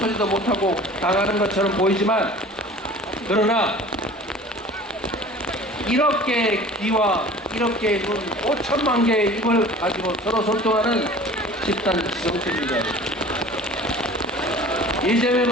못하고 당하는 것처럼 보이지만, 그러나 이렇게 귀와 이렇게 눈 5천만 개의 입을 가지고 서로 소통하는 집단 지성체입니다.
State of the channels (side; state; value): both; normal; correlation 0.43